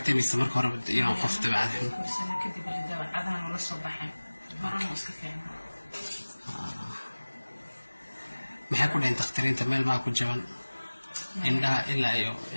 mise marka hore inuu qof dabeecad guursana kadib dabeecadahan la soo baxay marana iska fiicnaa maxay ku dhayn dakhtariinta meel maa ku jaban indhaha ilaa iyo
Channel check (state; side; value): inverted; both; correlation -1.00